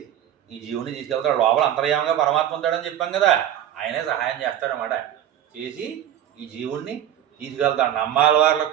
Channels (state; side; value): quieter; left; 11.0 dB